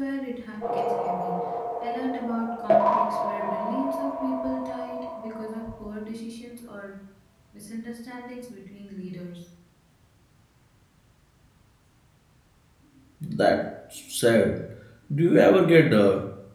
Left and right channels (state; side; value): identical; both; correlation 1.00